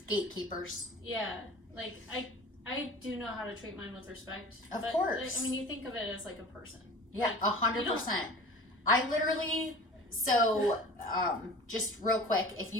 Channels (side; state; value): both; normal; correlation 0.40